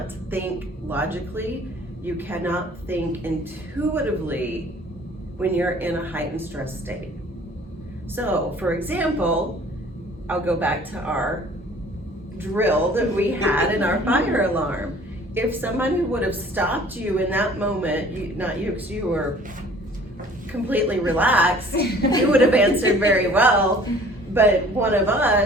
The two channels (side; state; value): both; normal; correlation 0.52